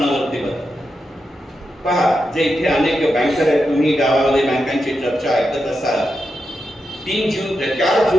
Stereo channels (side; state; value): both; normal; correlation 0.87